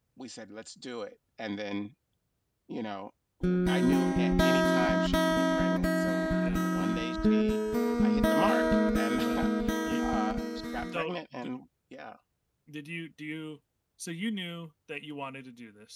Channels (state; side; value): identical; both; correlation 1.00